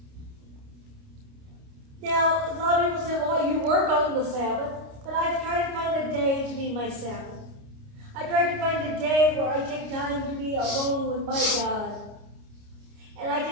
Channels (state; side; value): late; left; 29 ms